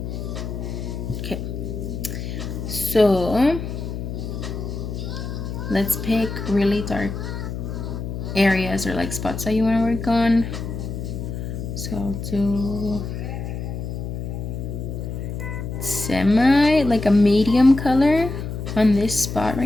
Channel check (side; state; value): left; noise; hum, 6 dB below the sound